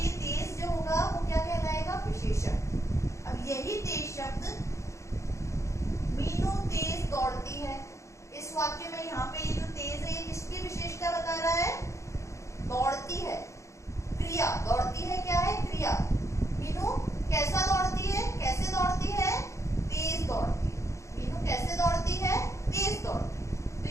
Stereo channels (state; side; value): late; right; 0.14 ms